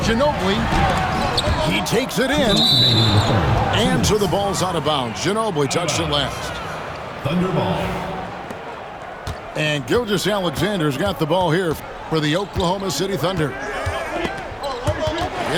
He takes it in. And so the ball's out of bounds. Ginobili touched it last. Thunder ball. And Gilgeous-Alexander's got the ball here for the Oklahoma City Thunder.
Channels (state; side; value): identical; both; correlation 1.00